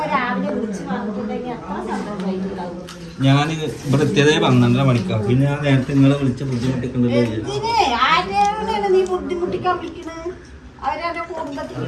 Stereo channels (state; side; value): identical; both; correlation 1.00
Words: രാവിലെ വിളിച്ച് പറഞ്ഞിട്ടുണ്ടെങ്കിൽ അത്ര സന്തോഷമായിട്ടുണ്ടാവും. ഞാൻ ഇവിടെ എത്തിയതേ 12:30 മണിക്കാണ്. പിന്നെ ഞാൻ നേരത്തെ നിങ്ങളെ വിളിച്ച ബുദ്ധിമുട്ടിക്കണ്ടല്ലോ. ആരെയാണ് നീ ബുദ്ധിമുട്ടിക്കാൻ വിളിക്കണത്? അവരെ കുടുംബത്തിൽ